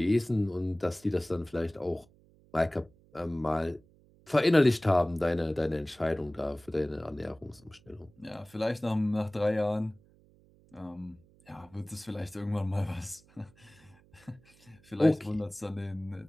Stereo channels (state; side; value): noise; right; hum, 29 dB below the sound